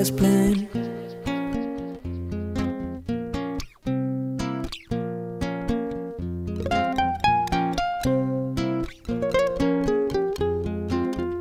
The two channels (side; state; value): both; identical; correlation 1.00